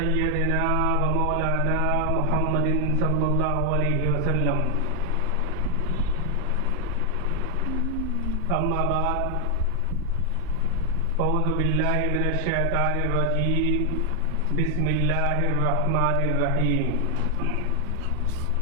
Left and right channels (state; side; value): different; both; correlation 0.00